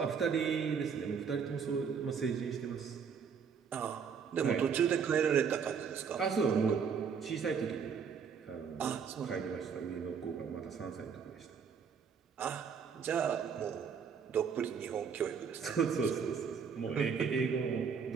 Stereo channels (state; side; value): quieter; left; 6.6 dB